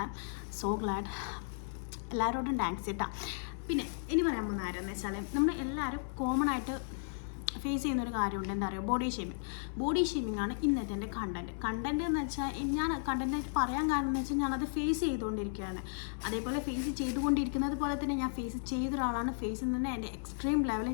I am so glad. എല്ലാവരോടും താങ്ക്സ് കേട്ടോ. പിന്നെ ഇനി പറയാൻ പോകുന്ന ആരെന്ന് വെച്ചാൽ നമ്മൾ എല്ലാവരും കോമൺ ആയിട്ട് ഫേസ് ചെയ്യുന്നൊരു കാര്യമുണ്ട്. എന്താ പറയുക, ബോഡി ഷേമിംഗ് ആണ് ഇന്നത്തെ എൻ്റെ കണ്ടൻറ്റ് എന്ന് വെച്ചാൽ ഞാൻ കണ്ടൻറ്റായിട്ട് പറയാൻ കാരണം എന്ന് വെച്ചാൽ ഞാനത് ഫേസ് ചെയ്തുകൊണ്ടിരിക്കുകയാണ്. അതേപോലെ ഫേസ് ചെയ്തുകൊണ്ടിരിക്കുന്നത് പോലെ തന്നെ ഞാൻ ഫേസ് ചെയ്ത ഒരാളാണ്. ഫേസിൽ നിന്ന് എൻ്റെ എക്സ്ട്രീം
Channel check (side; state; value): right; silent; 55 dB below the other